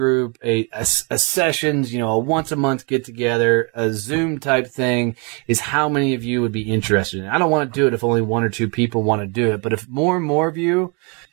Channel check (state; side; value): quieter; left; 33.4 dB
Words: a sessions, a once a month get together, a Zoom type thing, is how many of you would be interested in it? I don't want to do it if only one or two people want to do it, but if more and more of you